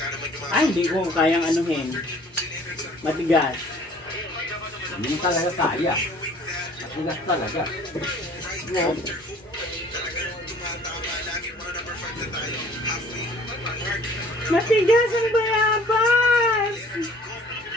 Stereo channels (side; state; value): both; normal; correlation 0.53